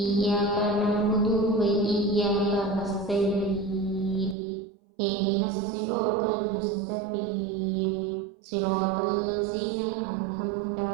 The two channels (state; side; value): drops out; left; at 4.4 s